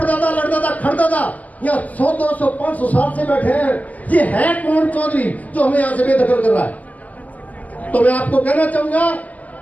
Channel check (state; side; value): late; right; 0.076 ms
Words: लड़दादा खड़दादा यहाँ 100, 200, 500 साल से बैठे हैं। ये है कौन चौधरी जो हमें यहाँ से बेदखल कर रहा है? तो मैं आपको कहना चाहूंगा,